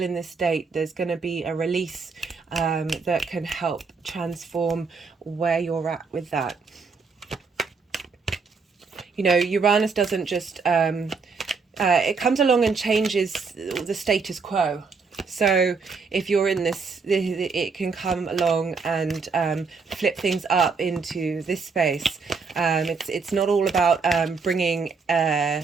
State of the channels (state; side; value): quieter; left; 4.9 dB